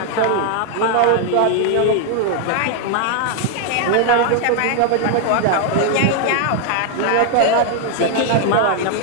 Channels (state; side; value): different; both; correlation 0.00